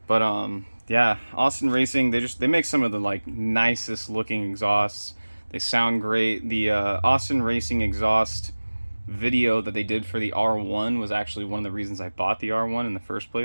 But yeah, Austin Racing, they make some of the like nicest looking exhausts. They sound great. The Austin Racing exhaust video that they did for the R1 was actually one of the reasons I bought the R1 in the first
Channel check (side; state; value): both; inverted; correlation -1.00